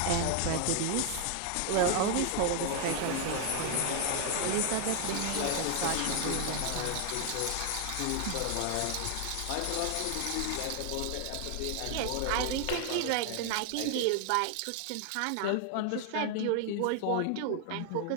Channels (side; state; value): both; different; correlation 0.00